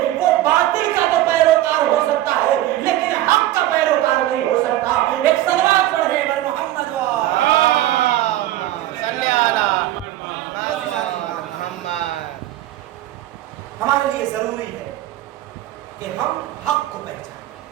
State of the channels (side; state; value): left; quieter; 14.5 dB